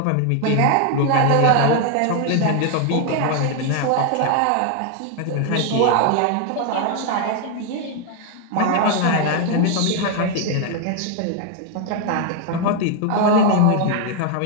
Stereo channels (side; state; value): both; different; correlation 0.00